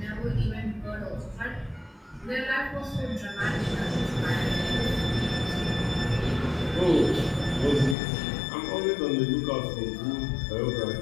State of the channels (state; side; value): drops out; right; at 8.0 s